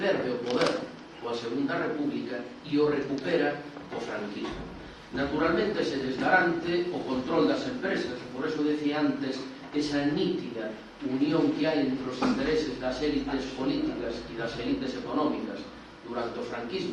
o poder coa Segunda República e o recupera o franquismo. Naturalmente se desgarante o control das empresas, por eso decía antes esa nítida unión que hai entre os intereses das élites políticas e das élites económicas durante o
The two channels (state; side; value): identical; both; correlation 1.00